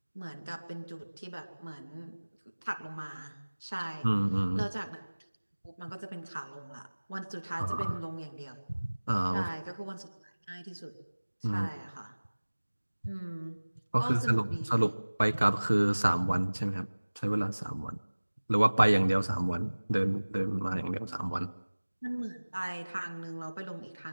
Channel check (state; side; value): inverted; both; correlation -1.00